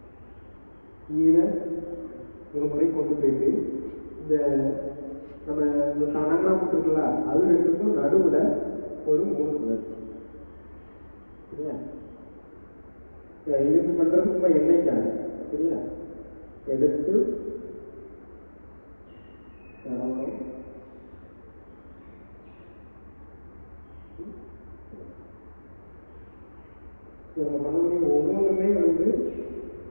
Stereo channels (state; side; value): inverted; both; correlation -1.00